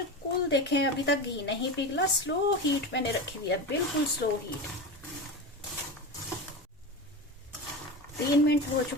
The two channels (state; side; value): normal; both; correlation 0.24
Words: देखें अभी तक घी नहीं पिघला, स्लो हीट मैंने रखी हुई है, बिल्कुल स्लो हीट। 3 मिनट हो